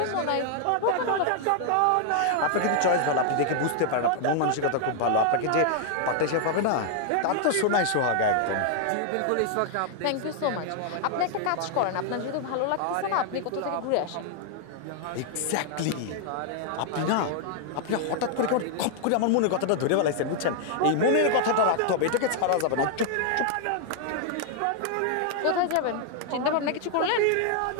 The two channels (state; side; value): different; both; correlation 0.00